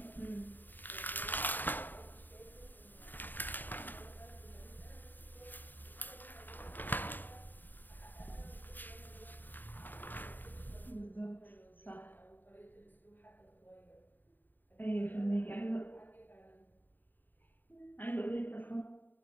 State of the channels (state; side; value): late; right; 0.090 ms